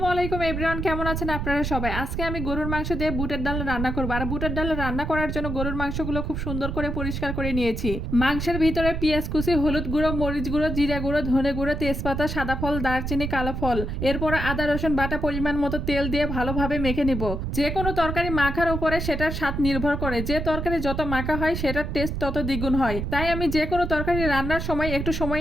আলাইকুম এভরিওয়ান, কেমন আছেন আপনারা সবাই? আজকে আমি গরুর মাংস দিয়ে বুটের ডাল রান্না করবো। আর বুটের ডাল রান্না করার জন্য গরুর মাংসগুলো খুব সুন্দর করে পরিষ্কার করে নিয়েছি। মাংসের ভিতরে পেঁয়াজ কুচি, হলুদ গুঁড়ো, মরিচ গুঁড়ো, জিরা গুঁড়ো, ধনে গুঁড়ো, তেজপাতা, সাদা ফল, দারচিনি, কালো ফল, এরপর আদা রসুন বাটা পরিমাণ মতো তেল দিয়ে ভালোভাবে মেখে নিব। যে কোনো তরকারি মাখার উপরে সেটার স্বাদ নির্ভর করে। যে তরকারি যত মাখা হয় সেটার টেস্ট তত দ্বিগুণ হয়। তাই আমি যে কোনো তরকারি রান্নার সময় একটু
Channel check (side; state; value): right; noise; rumble, 3 dB below the sound